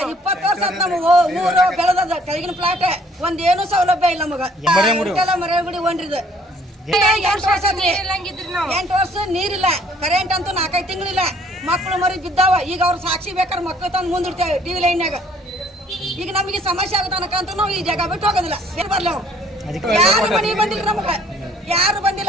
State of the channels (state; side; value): normal; both; correlation 0.59